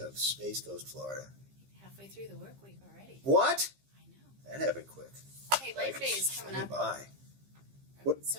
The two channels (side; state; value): left; late; 15 ms